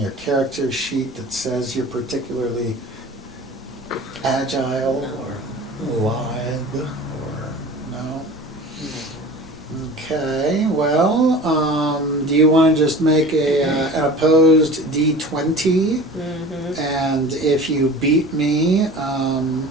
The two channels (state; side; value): normal; both; correlation 0.39